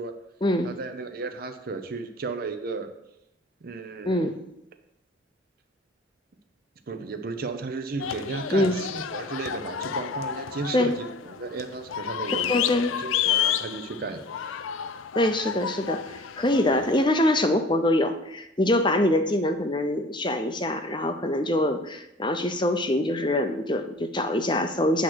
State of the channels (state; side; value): normal; both; correlation 0.45